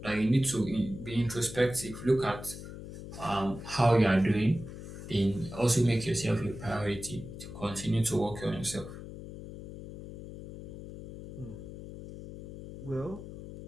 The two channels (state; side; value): noise; left; hum, 12 dB below the sound